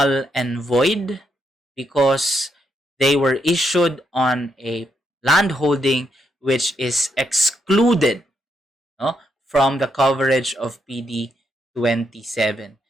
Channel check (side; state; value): both; normal; correlation 0.79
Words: and void because they were issued on a landholding which is excluded from the coverage of PD 27.